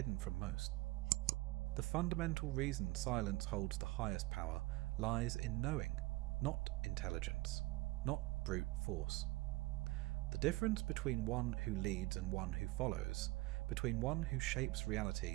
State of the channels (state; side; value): quieter; left; 21.6 dB